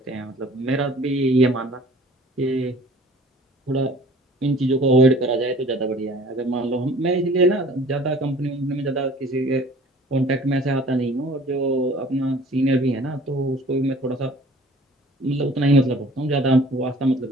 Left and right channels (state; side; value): normal; both; correlation 0.50